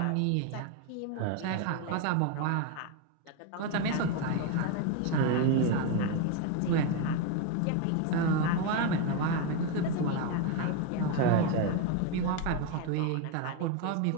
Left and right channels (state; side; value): different; both; correlation 0.02